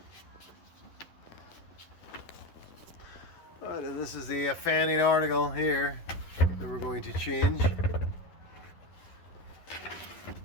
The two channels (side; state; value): right; late; 11 ms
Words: Alright, and this is the fanning article here that we're going to change.